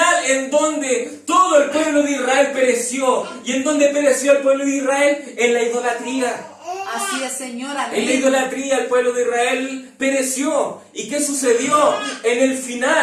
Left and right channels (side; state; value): both; identical; correlation 1.00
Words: en donde todo el pueblo de Israel pereció. ¿Y en donde pereció el pueblo de Israel? En la idolatría. Así es, Señor. En la Amén. idolatría el pueblo de Israel pereció. ¿Y qué sucedió? En el